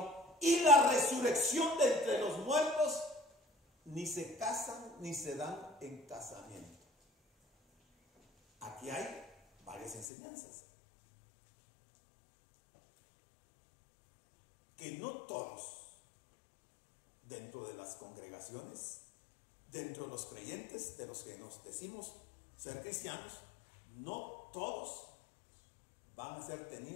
y la resurrección de entre los muertos, ni se casan ni se dan en casamiento. Aquí hay varias enseñanzas. Que no todos, dentro de las congregaciones, dentro de los creyentes, de los que nos decimos ser cristianos, no todos van a ser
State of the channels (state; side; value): drops out; right; at 10.1 s